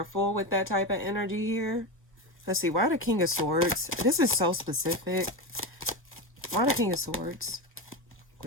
with that type of energy here. Let's see. Why the King of Swords? This is so specific. Why the King of Swords?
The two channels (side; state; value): both; normal; correlation 0.17